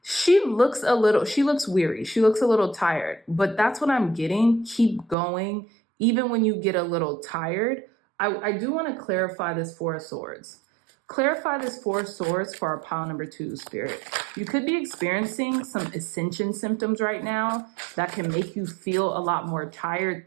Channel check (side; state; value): left; drops out; at 5.2 s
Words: She looks weary. She looks a little tired, but that's what I'm getting. Keep going. Even when you get a little tired, I do want to clarify this Four of Swords. Clarify this Four of Swords for our pile number 2, Spirit. You could be experiencing some ascension symptoms right now that can make you feel a lot more tired